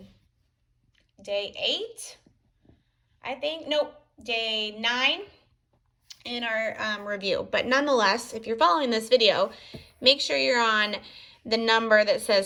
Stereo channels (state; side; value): identical; both; correlation 1.00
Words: day 8, I think. Nope, day 9 in our review. But nonetheless, if you're following this video, make sure you're on the number that